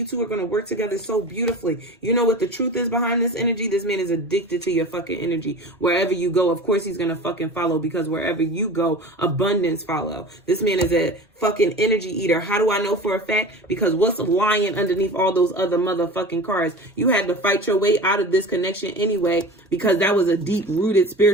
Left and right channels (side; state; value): both; normal; correlation 0.35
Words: are going to work together so beautifully. You know what the truth is behind this energy? This man is addicted to your fucking energy. Wherever you go, of course he's going to fucking follow, because wherever you go, abundance follow. This man is a fucking energy eater. How do I know for a fact? Because what's lying underneath all those other motherfucking cards? You had to fight your way out of this connection anyway, because that was a deep rooted